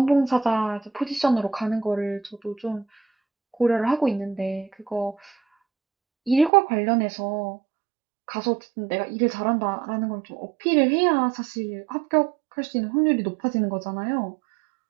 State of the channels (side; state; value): left; drops out; at 6.5 s